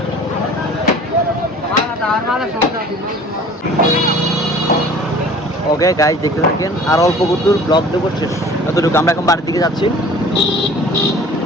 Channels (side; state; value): both; normal; correlation 0.46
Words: ওকে গাইজ দেখতে থাকেন আর অল্প দূর ব্লগ দেবো শেষ এতটুকু আমরা এখন বাড়ির দিকে যাচ্ছি